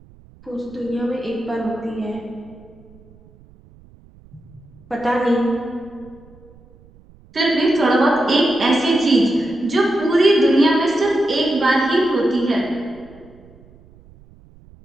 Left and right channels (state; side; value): noise; right; rumble, 26 dB below the sound